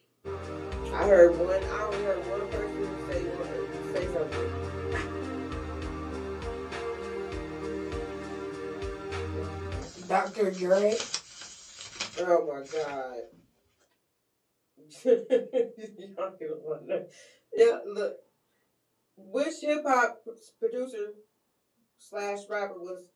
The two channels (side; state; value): both; identical; correlation 1.00